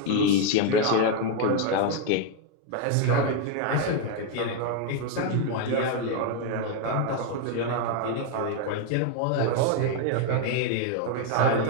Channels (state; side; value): different; both; correlation 0.01